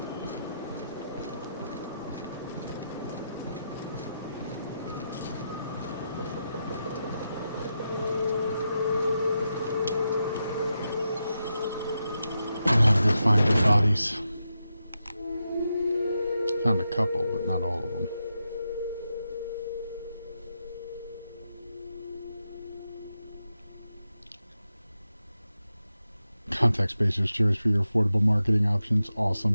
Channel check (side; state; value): both; inverted; correlation -0.87